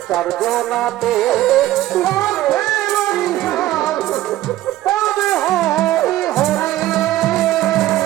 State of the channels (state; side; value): quieter; left; 14.8 dB